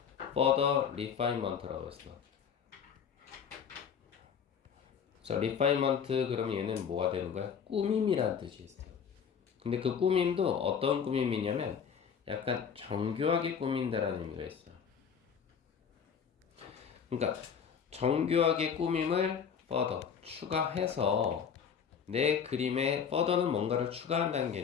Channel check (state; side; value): quieter; right; 7.1 dB